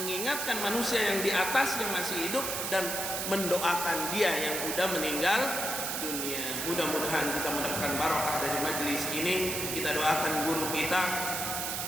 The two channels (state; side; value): noise; right; hiss, 2 dB below the sound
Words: manusia yang di atas yang masih hidup dan mendoakan dia yang udah meninggal dunia. Mudah-mudahan kita mendapatkan barokah dari majelis ini. Kita doakan guru kita